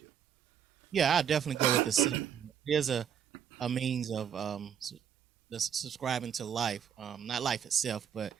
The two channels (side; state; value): left; quieter; 8.4 dB